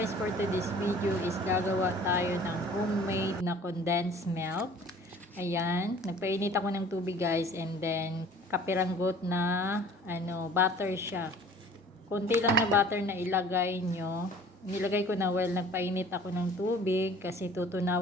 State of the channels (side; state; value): both; normal; correlation 0.49